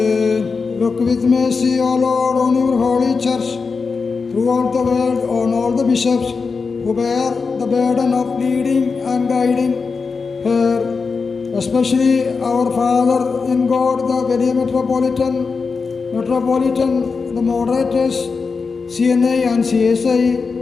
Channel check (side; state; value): right; quieter; 4.8 dB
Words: Look with mercy, O Lord, on your holy church, throughout the world, on all the bishops who bear the burden of leading and guiding her, especially our Father in God, the very Metropolitan, the moderators, CNA and CSI,